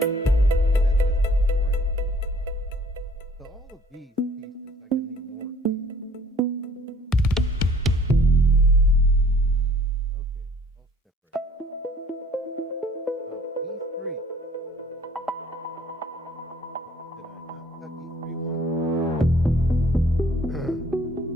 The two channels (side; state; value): both; normal; correlation 0.57